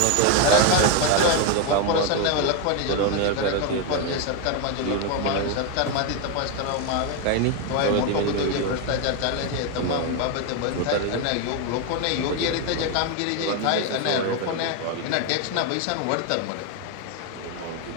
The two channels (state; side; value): different; both; correlation 0.01